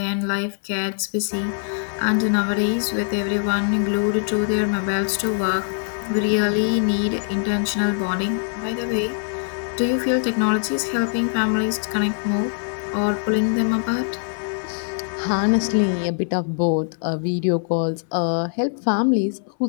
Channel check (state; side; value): silent; right; 64 dB below the other